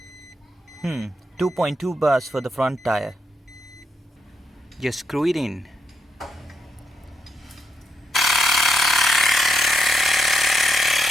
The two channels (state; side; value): normal; both; correlation 0.81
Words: 2.2 bars for the front tire. Just screw it in.